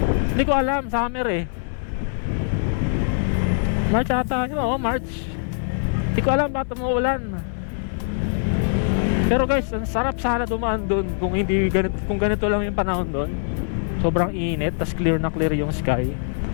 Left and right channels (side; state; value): right; silent; 64 dB below the other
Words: Hindi ko alam, summer eh. March ata yun, March. Hindi ko alam bakit umuulan. Pero guys, ang sarap sana dumaan doon kung hindi ganito, kung ganito lang yung panahon doon. Sobrang init, tas clear na clear yung sky.